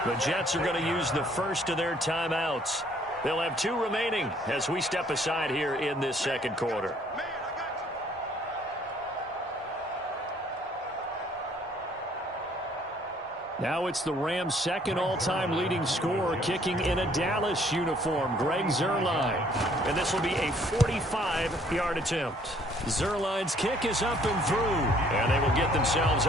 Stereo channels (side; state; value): both; normal; correlation 0.61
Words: The Jets are going to use the first of their timeouts. They'll have 2 remaining as we step aside here in this second quarter. Now it's the Rams' second all-time leading scorer, kicking in a Dallas uniform, Greg Zuerlein. And this will be a 45-yard attempt. Zuerlein's kick is up and through, and they will get themselves